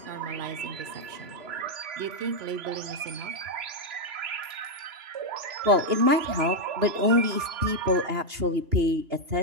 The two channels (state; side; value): late; left; 3.0 ms